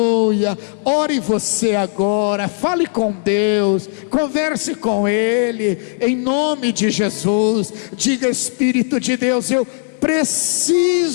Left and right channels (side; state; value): right; silent; digital silence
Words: Ore você agora, fale com Deus, converse com Ele, em nome de Jesus. Diga: Espírito de Deus, eu